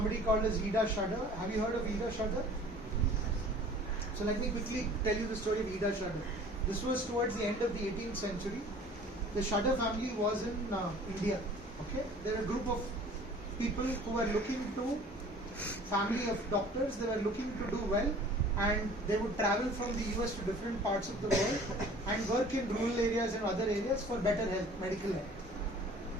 called as Ida Shadar. Have you heard of Ida Shadar? So let me quickly tell you the story of Ida Shadar. This was towards the end of the 18th century. The Shadar family was in India. Okay, there were a group of people who were looking to, family of doctors, they were looking to do well, and they would travel from the US to different parts of the world and work in rural areas and other areas for better health, medical health.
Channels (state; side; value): normal; both; correlation 0.48